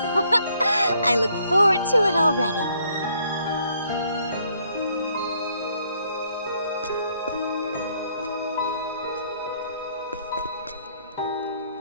I look forward to it already.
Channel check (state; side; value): inverted; both; correlation -0.68